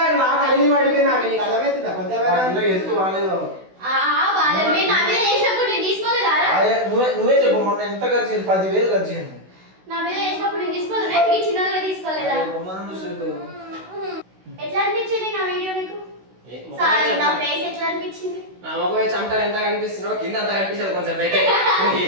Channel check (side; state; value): left; late; 16 ms